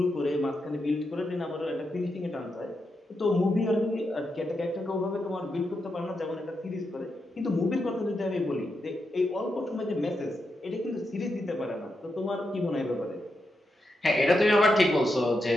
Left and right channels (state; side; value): normal; both; correlation 0.85